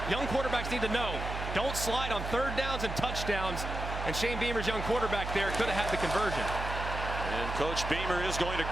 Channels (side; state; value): right; noise; hum, 5 dB below the sound